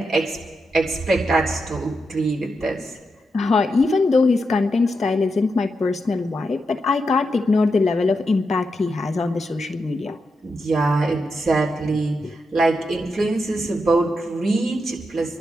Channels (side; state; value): both; normal; correlation 0.85